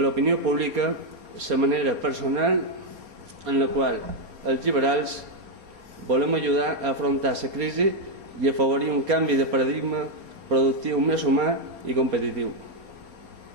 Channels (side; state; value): left; late; 4.3 ms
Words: pública la manera personal en la qual els liberals volem ajudar a afrontar la crisi i afavorir un canvi de paradigma productiu més humà i competitiu.